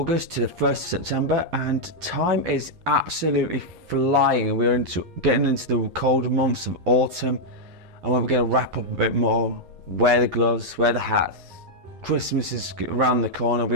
to the 1st of September, and time is absolutely flying. We're getting into the colder months of autumn, and we're going to wrap up a bit more. Wear the gloves, wear the hats. Christmas is around the corner,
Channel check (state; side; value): late; left; 11 ms